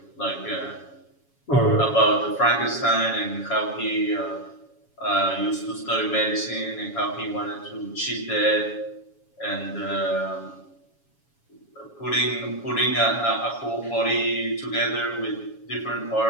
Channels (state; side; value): late; right; 7.2 ms